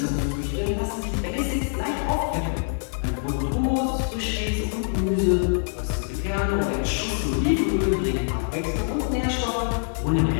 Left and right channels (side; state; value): right; silent; 59 dB below the other